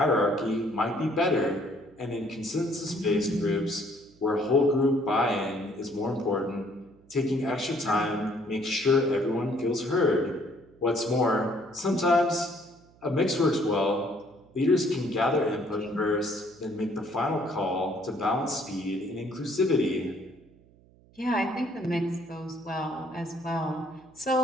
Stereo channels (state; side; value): noise; right; hum, 28 dB below the sound